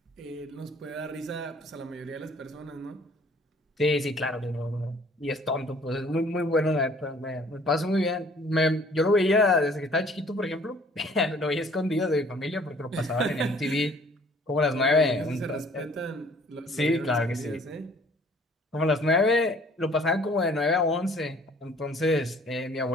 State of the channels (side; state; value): both; normal; correlation 0.56